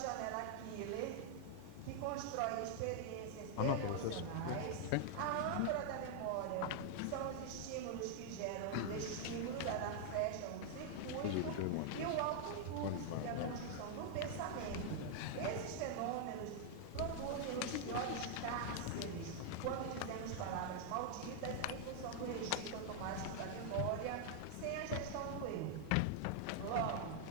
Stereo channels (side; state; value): both; different; correlation 0.00